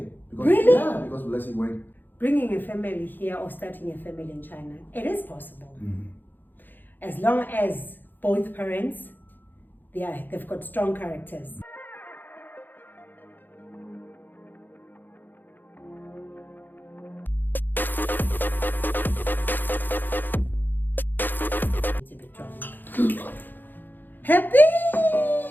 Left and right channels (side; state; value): right; late; 0.090 ms